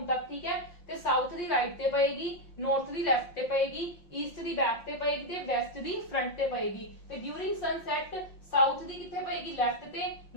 तक। ठीक है, ते साउथ दी राइट ते पएगी, नॉर्थ दी लेफ्ट ते पएगी, ईस्ट दी बैक ते पएगी ते वेस्ट दी फ्रंट ते पएगी। ते ड्यूरिंग सनसेट साउथ दी किथे पएगी, लेफ्ट ते,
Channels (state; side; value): late; right; 5.7 ms